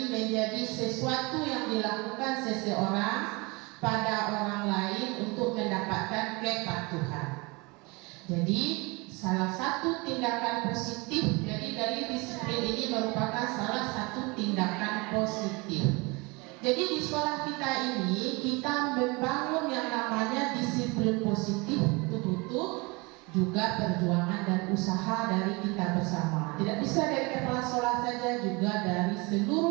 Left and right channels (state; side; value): quieter; left; 26.8 dB